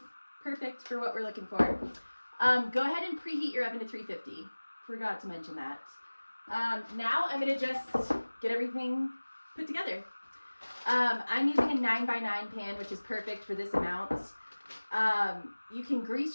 perfect for what we're looking for. Go ahead and preheat your oven to 350. Forgot to mention that. Now I'm gonna just get everything put together. I'm using a 9x9 pan, which is perfect for this amount. You can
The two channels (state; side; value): inverted; both; correlation -1.00